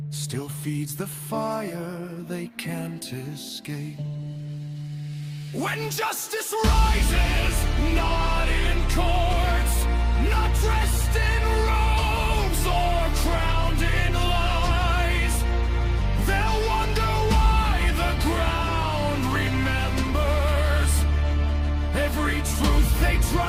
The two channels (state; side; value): identical; both; correlation 1.00